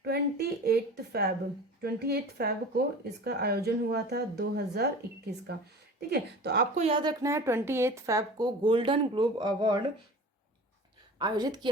28 फैब को इसका आयोजन हुआ था 2021 का। ठीक है, तो आपको याद रखना है 28 फैब को गोल्डन ग्लोब अवार्ड आयोजित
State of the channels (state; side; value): normal; both; correlation 0.38